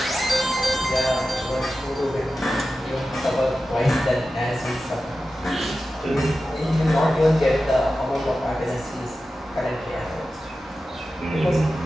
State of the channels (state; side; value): normal; both; correlation 0.93